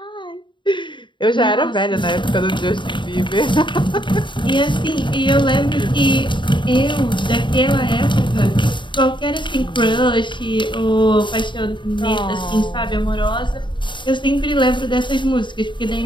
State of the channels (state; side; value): late; right; 0.23 ms